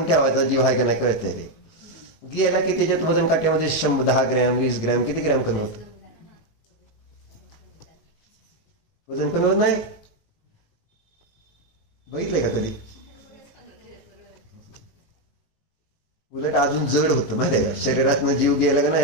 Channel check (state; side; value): late; right; 18 ms